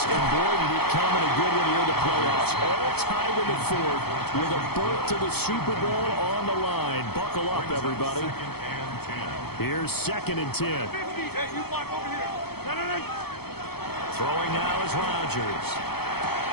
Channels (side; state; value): right; late; 0.96 ms